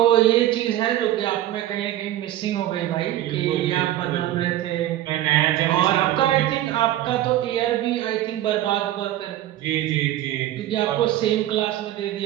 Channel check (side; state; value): left; quieter; 13.7 dB